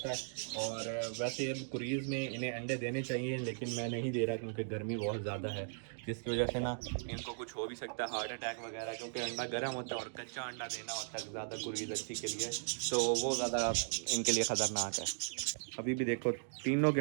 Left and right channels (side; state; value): left; silent; digital silence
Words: है। और वैसे अब क्रीज में इन्हें अंडे देने चाहिए, लेकिन मैं नहीं दे रहा क्योंकि गर्मी बहुत ज़्यादा है, जिसकी वजह से ना इनको कुछ हो भी सकता है, हार्ट अटैक वगैरह, क्योंकि अंडा गर्म होता है और कच्चा अंडा देना होता है ज़्यादा क्रीज अच्छी के लिए, तो वो ज़्यादा इनके लिए ख़तरनाक है। अभी भी देखो तीनों के